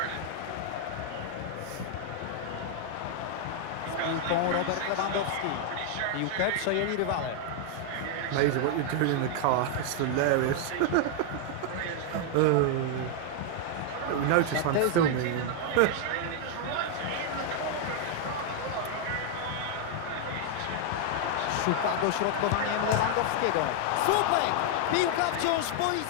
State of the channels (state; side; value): different; both; correlation 0.00